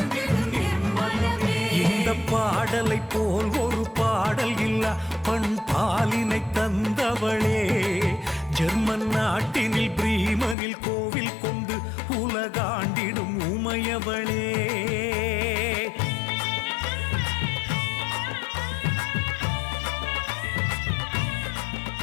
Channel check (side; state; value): right; drops out; at 10.6 s